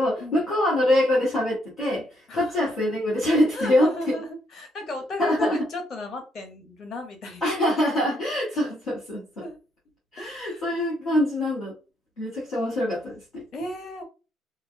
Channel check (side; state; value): both; normal; correlation 0.74